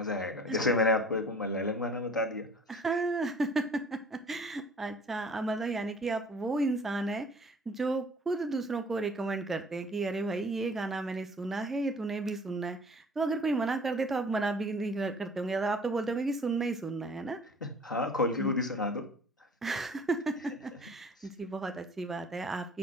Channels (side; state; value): both; normal; correlation 0.50